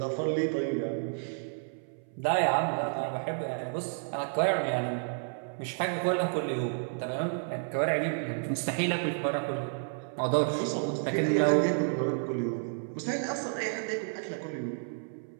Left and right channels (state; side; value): silent; left; 57 dB below the other